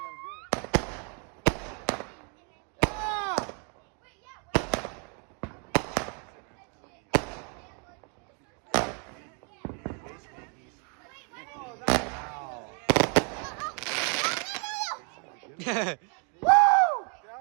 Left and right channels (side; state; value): left; quieter; 38.3 dB